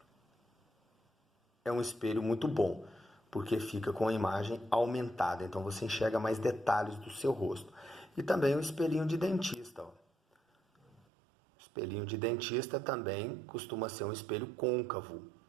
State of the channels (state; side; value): drops out; left; at 11.1 s